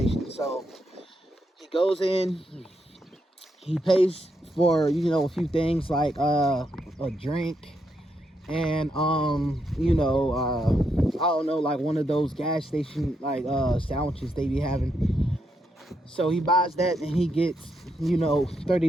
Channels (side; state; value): both; normal; correlation 0.80